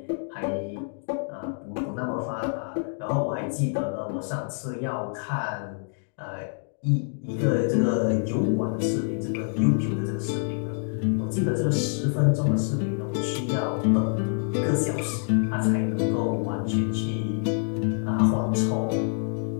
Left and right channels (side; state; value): right; silent; 56 dB below the other